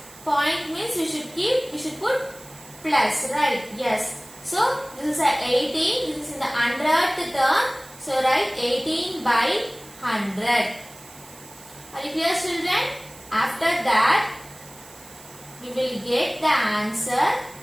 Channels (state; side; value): noise; right; hiss, 20 dB below the sound